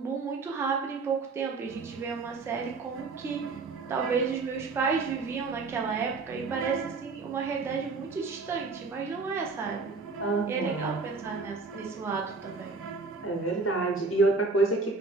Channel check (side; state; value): left; quieter; 4.1 dB